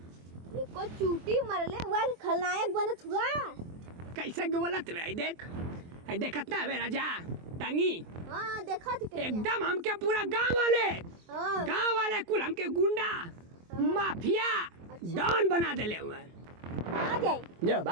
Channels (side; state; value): left; late; 23 ms